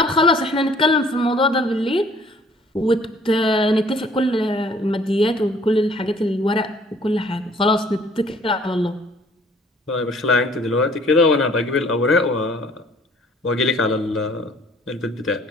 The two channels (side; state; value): both; normal; correlation 0.57